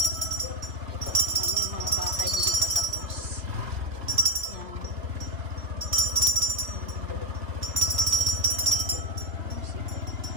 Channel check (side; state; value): left; late; 2.8 ms